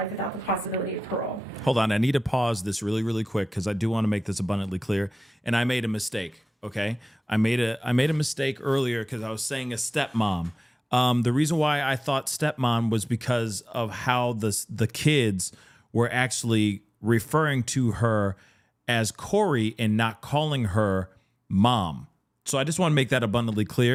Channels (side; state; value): both; normal; correlation 0.97